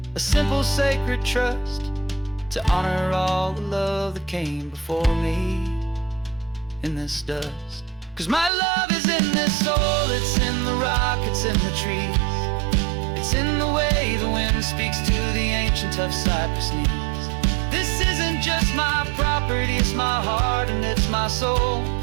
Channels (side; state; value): left; drops out; at 8.5 s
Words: a simple sacred trust, to honor all the love that came before me in this dust. 'Cause my love is in this soil, it's in the rock, it's in the trees. It's in the way the wind speaks to the ancient tough cypress knees. This isn't just my property, it's my heart and it's my soul.